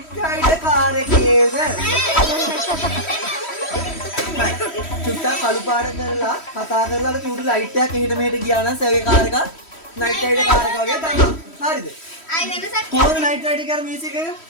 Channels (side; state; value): right; late; 3.1 ms